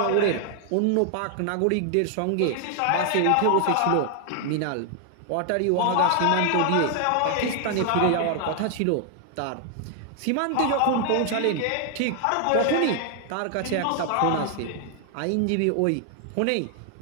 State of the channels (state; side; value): different; both; correlation 0.00